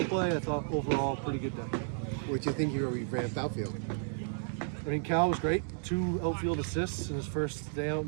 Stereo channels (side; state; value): left; silent; digital silence